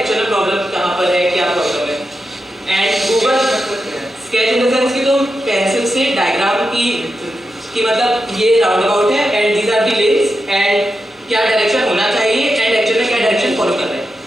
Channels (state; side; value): normal; both; correlation 0.88